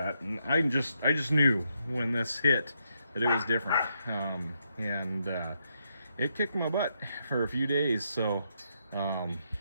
and I just knew when this hit that it was different, and it kicked my butt for a few days. So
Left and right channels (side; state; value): both; inverted; correlation -0.79